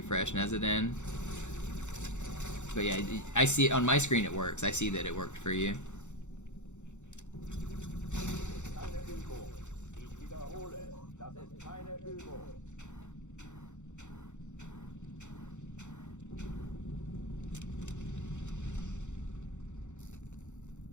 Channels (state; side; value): late; right; 0.84 ms